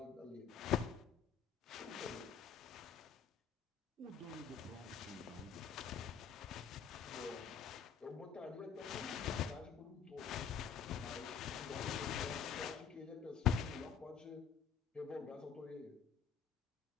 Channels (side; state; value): right; quieter; 7.3 dB